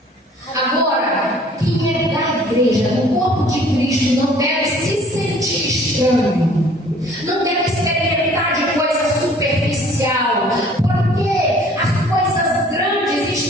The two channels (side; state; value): both; normal; correlation 0.54